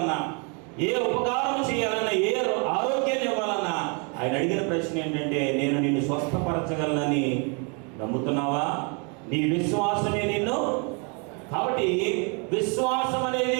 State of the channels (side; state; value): left; quieter; 35.5 dB